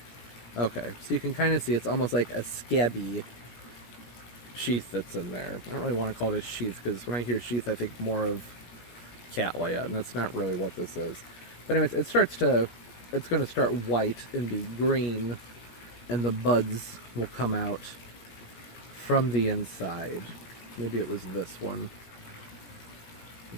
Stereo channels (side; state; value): right; late; 17 ms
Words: Okay, so you can kind of see it's almost like a scabby sheath that's in there. I don't really want to call it a sheath, because when I hear sheath I think more of cattleya, and that's not really what this is. But anyways, it's going to start white and be green, and the buds will come out from the inside. Maybe it was this one.